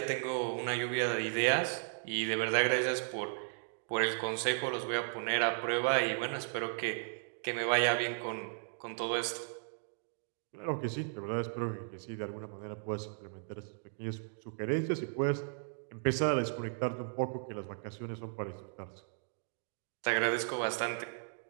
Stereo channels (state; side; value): silent; left; digital silence